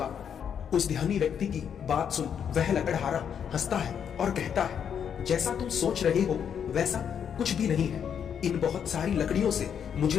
उस ध्यानी व्यक्ति की बात सुन वह लकड़हारा हंसता है और कहता है, जैसा तुम सोच रहे हो वैसा कुछ भी नहीं है। इन बहुत सारी लकड़ियों से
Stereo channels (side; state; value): right; quieter; 8.0 dB